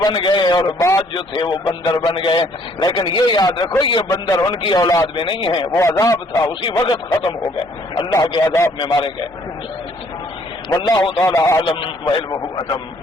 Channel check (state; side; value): normal; both; correlation 0.63